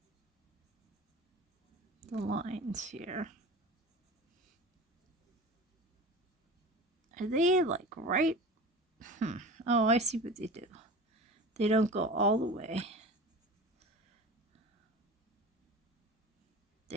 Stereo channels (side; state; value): both; normal; correlation 0.35